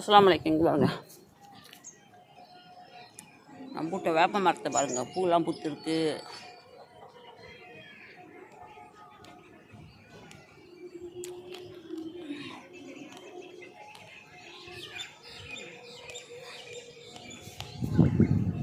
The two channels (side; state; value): both; identical; correlation 1.00